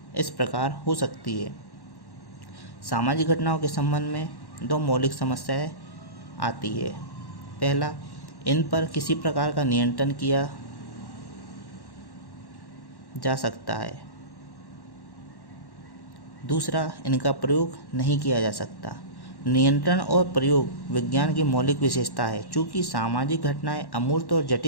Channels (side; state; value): right; late; 1.1 ms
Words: इस प्रकार हो सकती है। सामाजिक घटनाओं के संबंध में दो मौलिक समस्याएं आती है। पहला, इन पर किसी प्रकार का नियंत्रण किया जा सकता है। दूसरा, इनका प्रयोग नहीं किया जा सकता। नियंत्रण और प्रयोग विज्ञान की मौलिक विशेषता है। चूँकि सामाजिक घटनाएं अमूर्त और